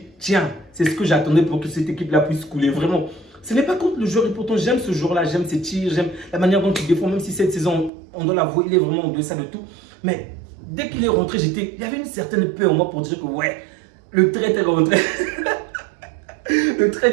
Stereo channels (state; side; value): drops out; left; at 7.9 s